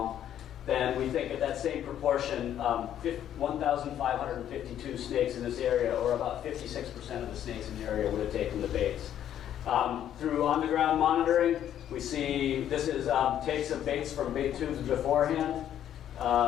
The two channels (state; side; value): quieter; right; 10.6 dB